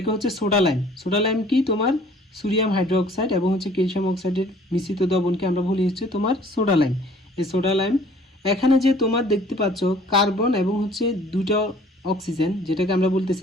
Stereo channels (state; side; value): normal; both; correlation 0.54